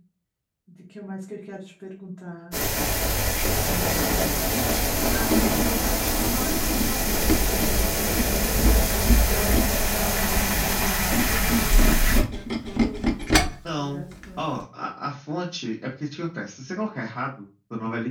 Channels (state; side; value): identical; both; correlation 1.00